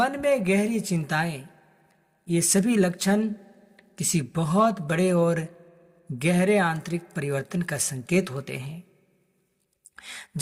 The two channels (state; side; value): identical; both; correlation 1.00